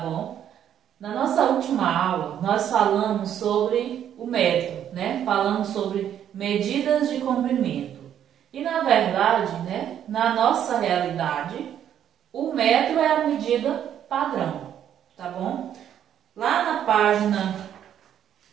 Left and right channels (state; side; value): quieter; left; 10.0 dB